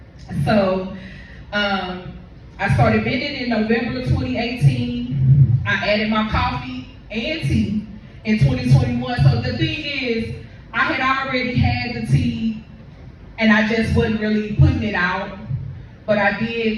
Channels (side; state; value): both; identical; correlation 1.00